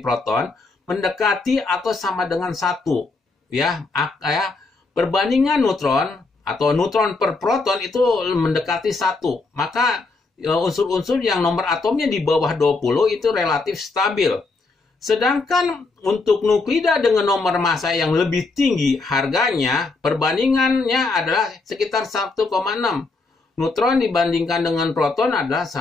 proton, mendekati atau sama dengan 1. Ya, perbandingan neutron atau neutron per proton itu mendekati 1. Maka unsur-unsur yang nomor atomnya di bawah 20 itu relatif stabil. Sedangkan untuk nuklida dengan nomor massa yang lebih tinggi, harganya perbandingannya adalah sekitar 1,6. Neutron dibandingkan dengan proton adalah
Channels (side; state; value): right; quieter; 3.7 dB